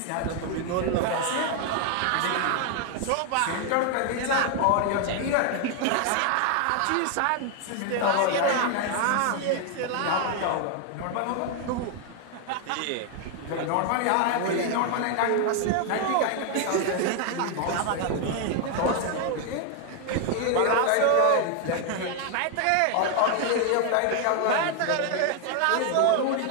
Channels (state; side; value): different; both; correlation 0.00